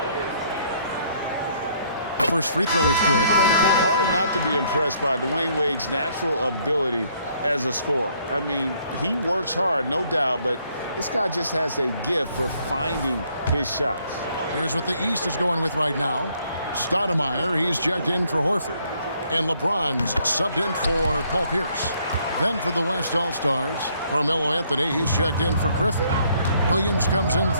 First free throw is good. Hard not to be impressed by Dwyane Wade's natural ability as a scorer. I mean, he works hard, no doubt, but this guy just has a gift for finding his shots. Here's what the East is going with right now. Stoudemire, he's checked in for Horford. And LeBron's subbed in for Paul Pierce. Then for the West All-Stars, Carmelo Anthony, he's checked in for Griffin. Williams comes in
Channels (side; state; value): both; inverted; correlation -0.66